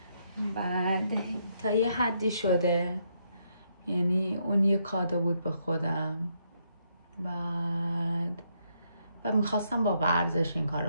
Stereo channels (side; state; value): both; inverted; correlation -0.76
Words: بعد تا یه حدی شده، یعنی اون یه کادو بود به خودم. بعد و میخواستم با ورزش این